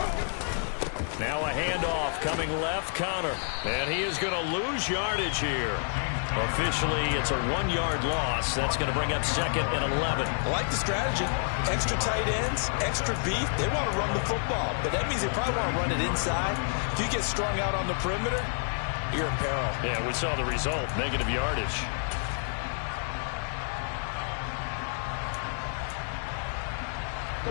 Now a handoff coming left, Connor. And he is going to lose yardage here. Officially, it's a 1-yard loss. That's going to bring up 2nd and 11. I like the strategy. Extra tight ends, extra beef. They want to run the football, but that means they probably want to run it inside. If you get strung out on the perimeter, you're in peril. Yeah, we saw the result, negative yardage.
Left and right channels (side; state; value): right; silent; 59 dB below the other